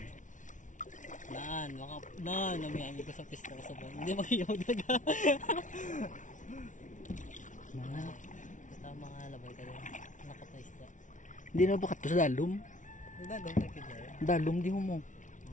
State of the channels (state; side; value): late; right; 0.37 ms